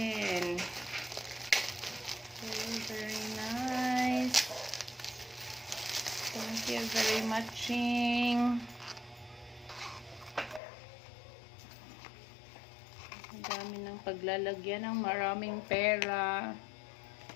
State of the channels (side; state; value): right; drops out; at 10.6 s